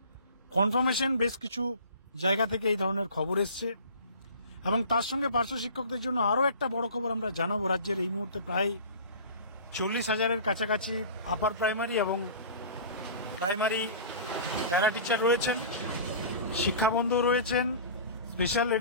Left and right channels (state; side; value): inverted; both; correlation -0.41